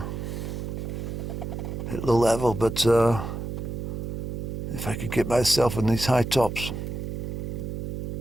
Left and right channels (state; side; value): noise; right; hum, 5 dB below the sound